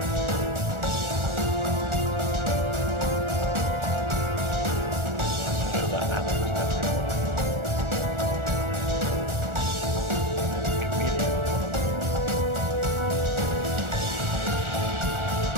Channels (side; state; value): left; late; 1.4 ms